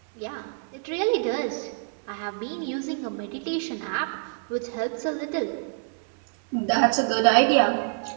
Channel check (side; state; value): left; silent; 61 dB below the other